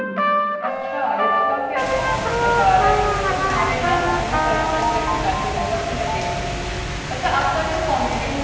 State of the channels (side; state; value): both; identical; correlation 1.00